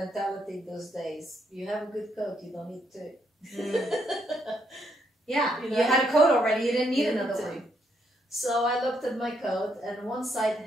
those days. You have a good coat, you don't need 2. Yeah, you had a coat already, you didn't need another one. So I looked at my coat, and one side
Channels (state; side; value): normal; both; correlation 0.75